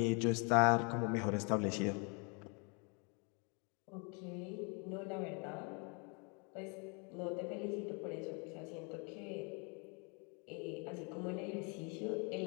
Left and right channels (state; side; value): quieter; right; 34.4 dB